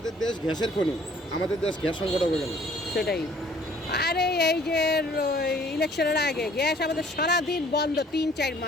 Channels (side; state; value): both; normal; correlation 0.57